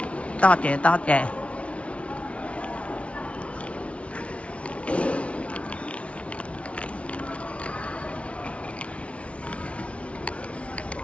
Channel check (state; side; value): late; right; 0.062 ms